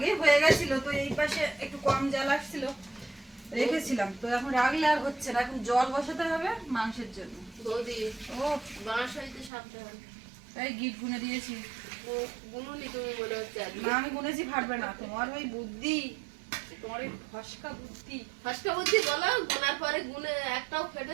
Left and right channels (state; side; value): drops out; left; at 9.5 s